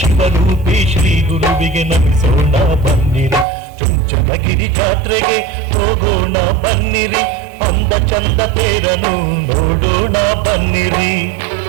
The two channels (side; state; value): left; drops out; at 3.5 s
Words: ಶಿವರೂಪಿ ಶ್ರೀ ಗುರುವಿಗೆ ನಮಿಸೋಣ ಬನ್ನಿರಿ. ಚುಂಚನಗಿರಿ ಜಾತ್ರೆಗೆ ಹೋಗೋಣ ಬನ್ನಿರಿ, ಅಂದ ಚಂದ ತೇರನು ನೋಡೋಣ ಬನ್ನಿರಿ.